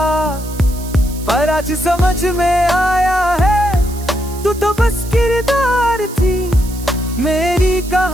पर आज समझ में आया है, तू तो बस किरदार थी। मेरी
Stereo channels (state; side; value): noise; right; hiss, 17 dB below the sound